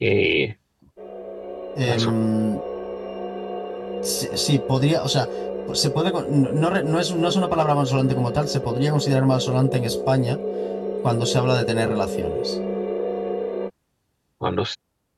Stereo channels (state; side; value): identical; both; correlation 1.00